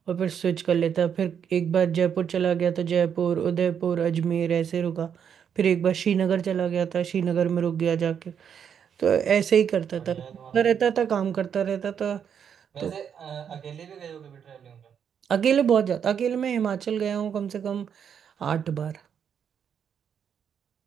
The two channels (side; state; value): left; quieter; 7.9 dB